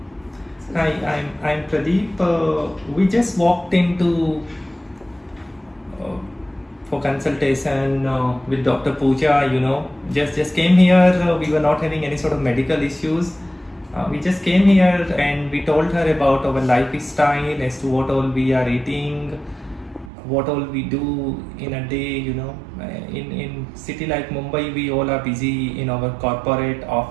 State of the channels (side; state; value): left; drops out; at 20.1 s